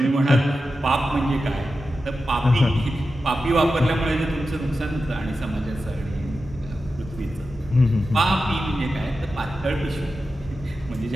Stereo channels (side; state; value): both; normal; correlation 0.91